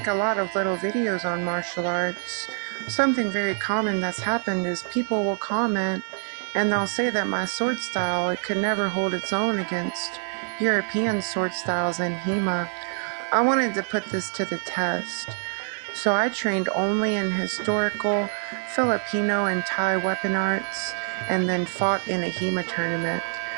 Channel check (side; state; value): left; silent; 61 dB below the other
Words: a lot of little videos on martial arts. Something very common that's happened is people will comment and they'll say that my sword style, it could never hold its own against European sword styles and HEMA. I wanted to put this to the test. So I trained only in historical, Filipino, and Thai weapon arts, and then fought in a HEMA tournament.